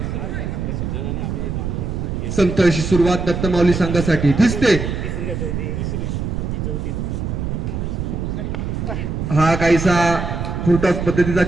संत अशी सुरुवात दत्तमाऊली संघासाठी दिसते. हा काहीसा फुटॉस पद्धतीचा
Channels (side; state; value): right; noise; rumble, 3 dB below the sound